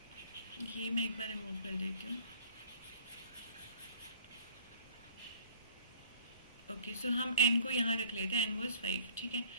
ये मैं एक बार रिमूव कर देती हूँ. ओके, सो हम एन को यहाँ रख लेते हैं. N was 5. ठीक है,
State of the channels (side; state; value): both; inverted; correlation -0.54